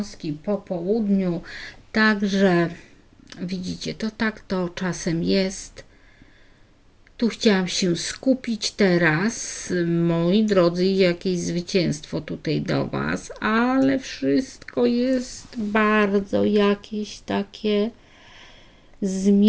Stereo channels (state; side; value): identical; both; correlation 1.00